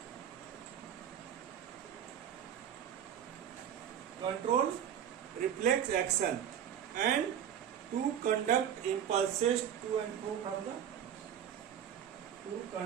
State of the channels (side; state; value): left; quieter; 9.4 dB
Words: Control reflex action and to conduct impulses to and fro from the to